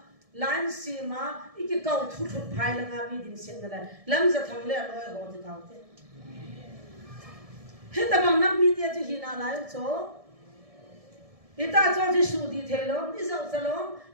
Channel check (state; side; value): late; left; 1.7 ms